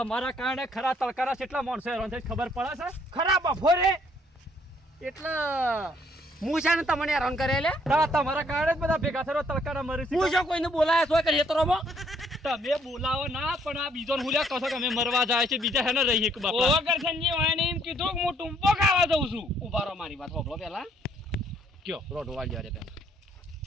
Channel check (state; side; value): normal; both; correlation 0.66